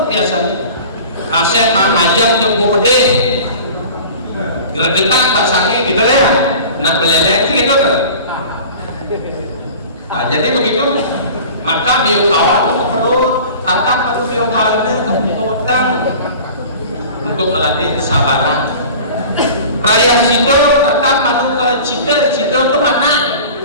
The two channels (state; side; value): inverted; both; correlation -0.40